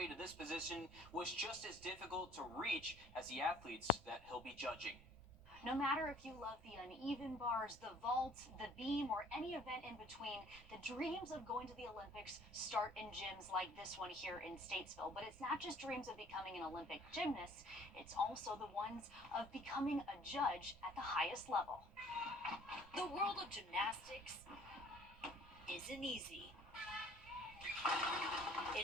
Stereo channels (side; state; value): right; noise; rumble, 21 dB below the sound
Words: to this position was just as difficult to reach as the athletes that he'll be judging. No matter if you love the uneven bars, the vault, the beam, or any event in between, the dreams of going to the Olympics start in gyms like this one here in Statesville. But it's not just dreams of becoming an Olympic gymnast, it's also the ones of becoming a judge at the highest level. The world of gymnastics isn't easy.